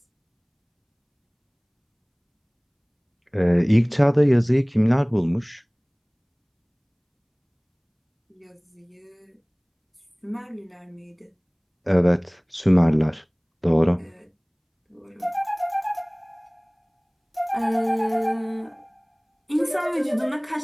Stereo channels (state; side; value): identical; both; correlation 1.00